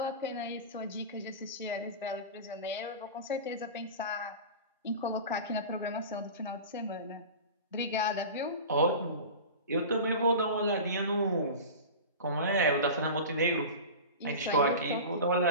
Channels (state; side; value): inverted; both; correlation -0.31